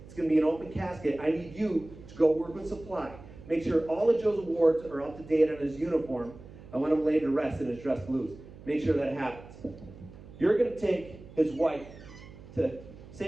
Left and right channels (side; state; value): right; noise; hum, 18 dB below the sound